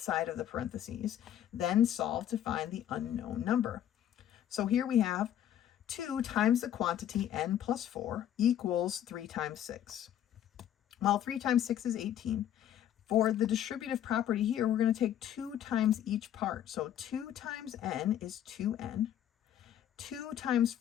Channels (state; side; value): quieter; right; 10.8 dB